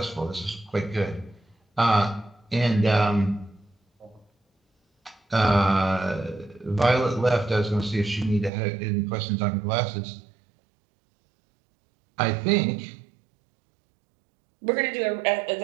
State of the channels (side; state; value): left; drops out; at 8.5 s